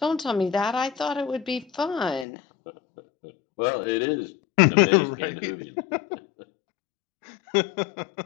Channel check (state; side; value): drops out; right; at 2.2 s